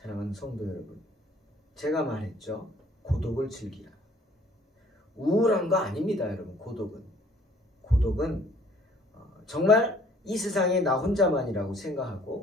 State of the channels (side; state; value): both; normal; correlation 0.57